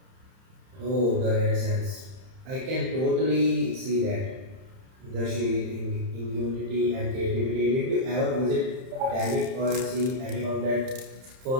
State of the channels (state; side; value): late; left; 31 ms